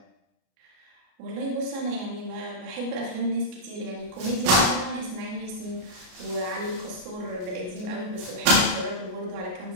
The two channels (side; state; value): left; late; 33 ms